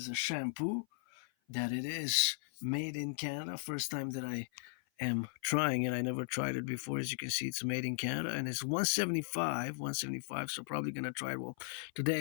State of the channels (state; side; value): silent; right; 53 dB below the other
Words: a shampoo that it is made in Canada. First time that I am trying it. I never tried it before. As you can see, it's made in Canada and it's 175, 175. So probably gonna try it. Well, today